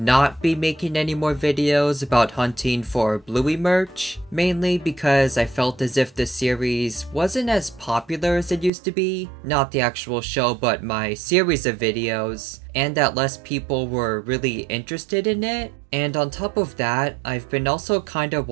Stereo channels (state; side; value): drops out; left; at 8.7 s